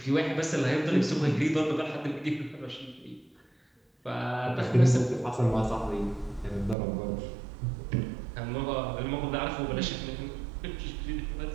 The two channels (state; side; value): drops out; left; at 6.8 s